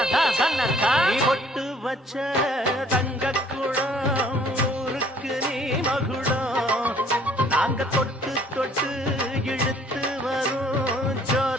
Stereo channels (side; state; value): both; normal; correlation 0.59